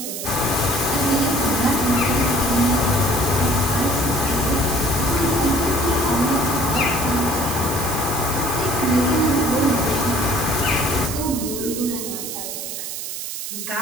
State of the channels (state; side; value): noise; right; hiss, 6 dB below the sound